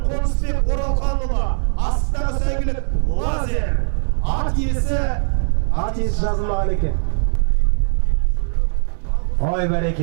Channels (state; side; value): silent; left; digital silence